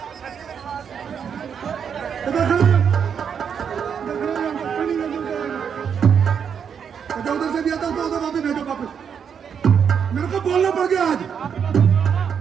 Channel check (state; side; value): quieter; left; 7.3 dB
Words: उधर से भी आता तो उधर वापस भेजो वापस। मेरे को बोलना पड़ गया आज।